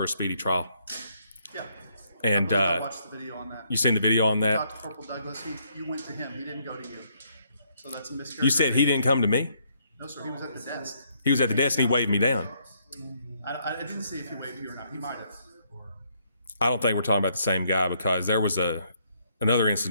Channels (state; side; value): inverted; both; correlation -0.71